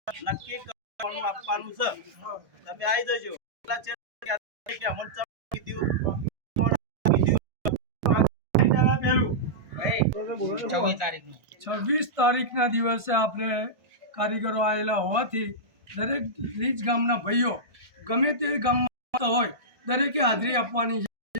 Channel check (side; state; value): left; late; 1.6 ms